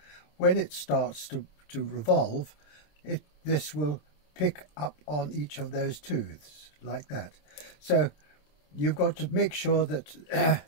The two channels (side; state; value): right; late; 27 ms